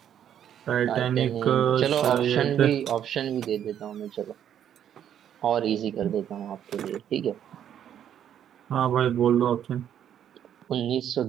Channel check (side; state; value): left; quieter; 9.8 dB